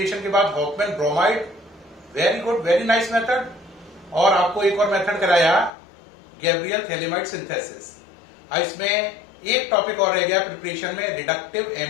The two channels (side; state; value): right; drops out; at 5.7 s